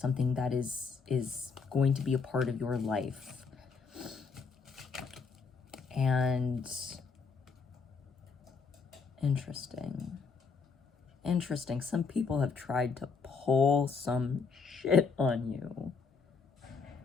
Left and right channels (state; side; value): quieter; right; 5.1 dB